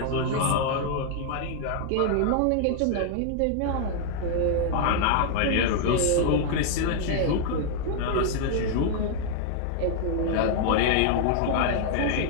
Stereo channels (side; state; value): both; different; correlation 0.00